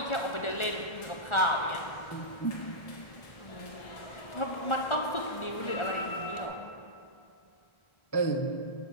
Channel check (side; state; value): right; late; 1.4 ms